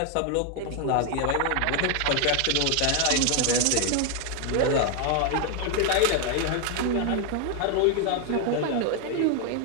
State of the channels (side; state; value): both; different; correlation 0.01